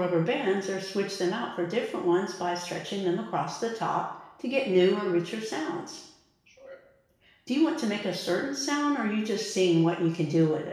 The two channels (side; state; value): both; identical; correlation 1.00